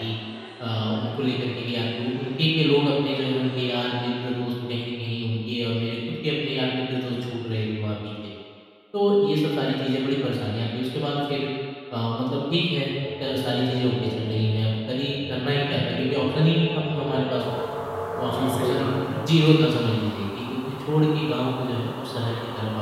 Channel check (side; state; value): both; identical; correlation 1.00